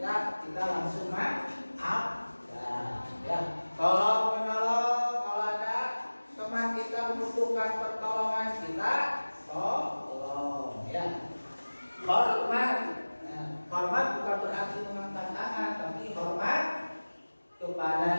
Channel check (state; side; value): inverted; both; correlation -1.00